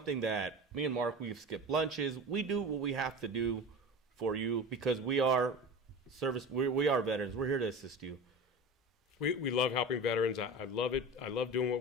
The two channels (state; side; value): normal; both; correlation 0.32